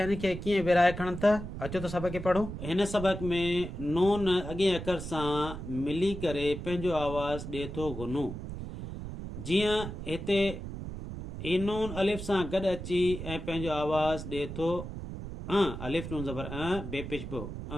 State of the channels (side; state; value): right; noise; rumble, 8 dB below the sound